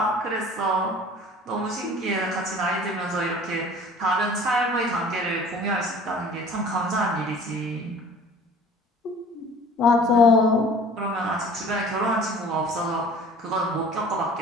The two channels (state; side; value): normal; both; correlation 0.47